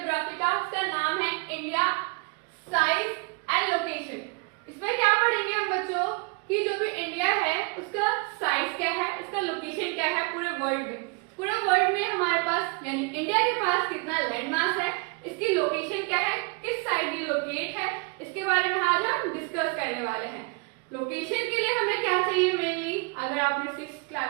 का, इसका नाम है इंडिया साइज एंड लोकेशन। इसमें क्या पढ़ेंगे हम बच्चों कि जो भी इंडिया है उसका साइज क्या है, इसका लोकेशन क्या है पूरे वर्ल्ड में। पूरे वर्ल्ड में हमारे पास यानी इंडिया के पास कितना लैंड मास है, इसकी लोकेशन क्या है, किस साइड ये लोकेट है, इसके बारे में आज हम डिस्कस करने वाले हैं। लोकेशन के लिए हमें क्या चाहिए मेनली, अगर आपने 6th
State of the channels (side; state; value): left; quieter; 31.3 dB